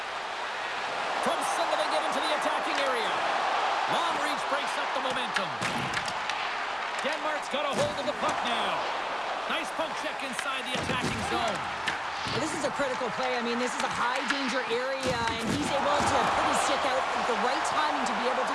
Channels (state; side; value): identical; both; correlation 1.00